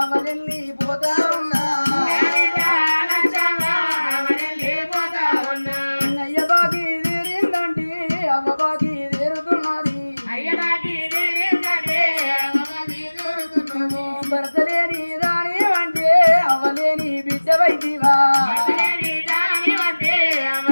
పోతా ఉన్నా అయ్య బాకి తీరిందంటే అవ్వ బాకి తీరుతున్నది భర్తలేని దాని అంటే అవ్వలేని బిడ్డ వైదివా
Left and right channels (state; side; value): inverted; both; correlation -1.00